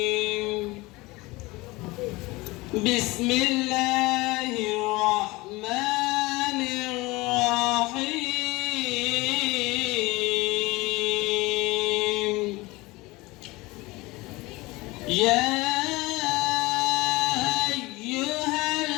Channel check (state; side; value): quieter; right; 22.1 dB